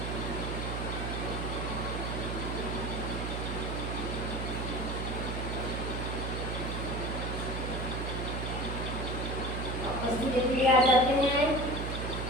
आ जाते हैं।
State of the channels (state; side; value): noise; right; hum, 3 dB below the sound